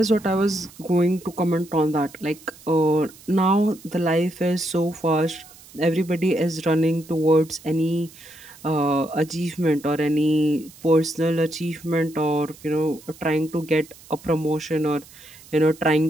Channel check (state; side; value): noise; right; hiss, 22 dB below the sound